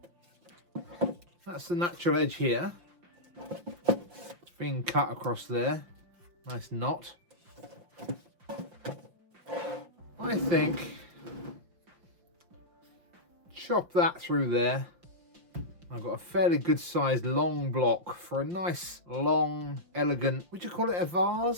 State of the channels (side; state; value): left; late; 5.7 ms